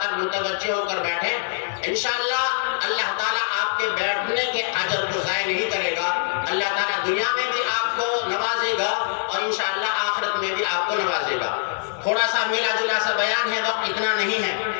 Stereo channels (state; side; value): silent; right; digital silence